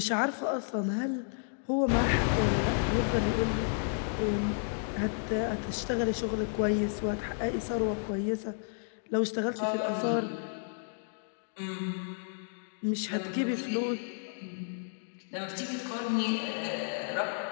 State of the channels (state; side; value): silent; right; digital silence